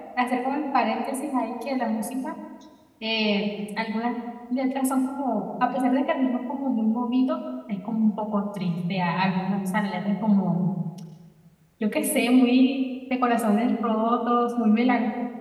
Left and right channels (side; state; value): both; identical; correlation 1.00